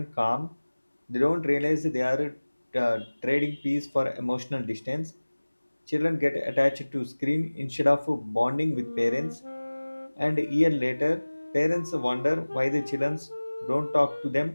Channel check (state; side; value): inverted; both; correlation -1.00